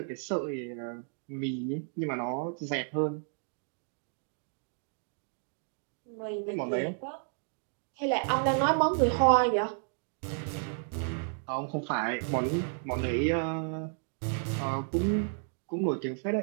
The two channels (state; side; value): silent; left; 56 dB below the other